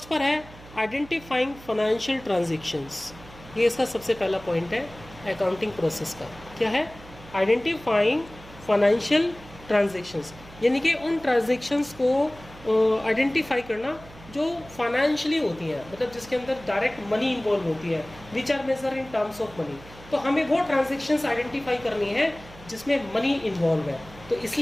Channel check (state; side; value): noise; right; hum, 19 dB below the sound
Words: पर है आइडेंटिफाइंग फाइनेंशियल ट्रांजेक्शंस, ये इसका सबसे पहला पॉइंट है अकाउंटिंग प्रोसेस का। क्या है? आइडेंटिफाइंग फाइनेंशियल ट्रांजेक्शंस, यानी कि उन ट्रांजेक्शंस को आइडेंटिफाई करना जो फाइनेंशियली होती हैं, मतलब जिसके अंदर डायरेक्ट मनी इन्वॉल्व होती है, which are measure in terms of money. तो हमें वो ट्रांजेक्शंस आइडेंटिफाई करनी है जिसमें मनी इन्वॉल्व है, तो